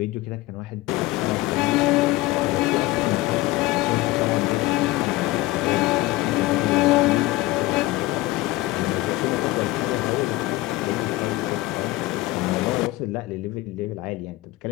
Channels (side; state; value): right; quieter; 18.8 dB